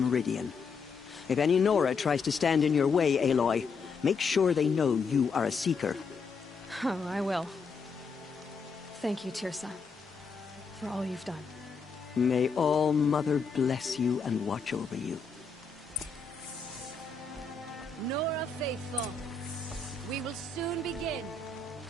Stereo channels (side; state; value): right; quieter; 4.9 dB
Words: If any Nora tries to stand in your way, Aloy, make sure they know you are a Seeker. Oh, I will. Thank you, Tirsa, for all you've done. May All-Mother bless you and watch over you. Nora Faithful, we will soon begin.